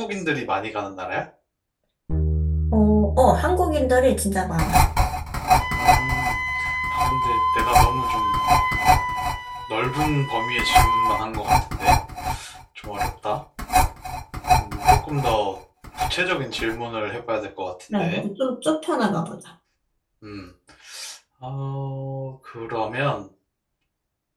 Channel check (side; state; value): both; identical; correlation 1.00